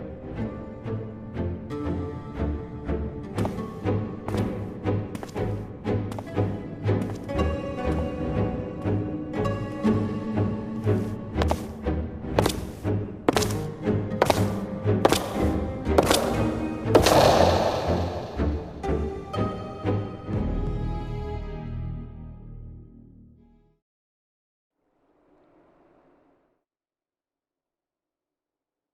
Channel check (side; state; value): both; identical; correlation 1.00